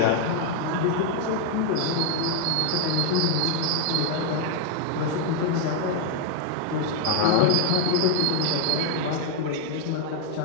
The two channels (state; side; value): different; both; correlation 0.00